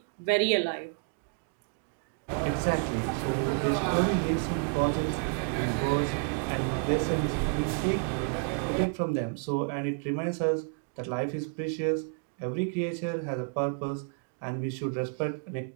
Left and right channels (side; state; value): left; quieter; 39.9 dB